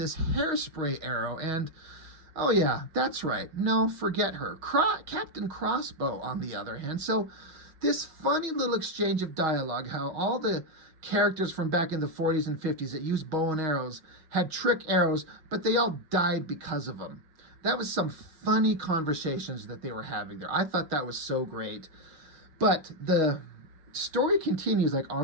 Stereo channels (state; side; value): late; left; 6.5 ms